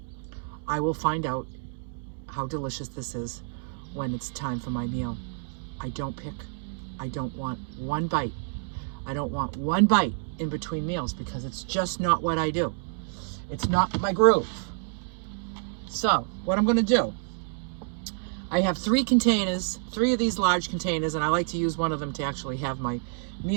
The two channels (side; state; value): left; silent; 59 dB below the other